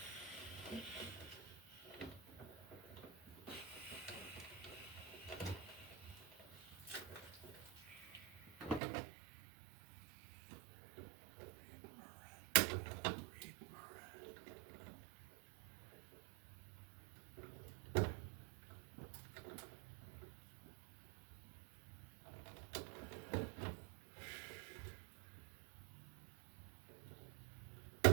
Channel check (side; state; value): left; drops out; at 8.8 s